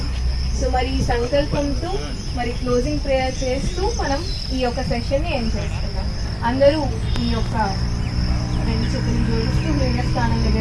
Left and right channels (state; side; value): identical; both; correlation 1.00